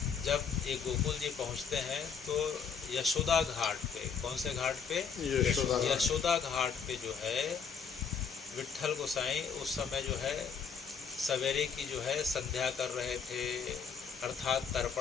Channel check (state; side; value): quieter; right; 6.3 dB